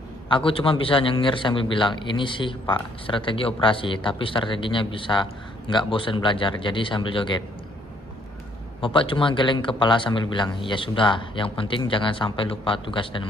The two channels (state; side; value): normal; both; correlation 0.66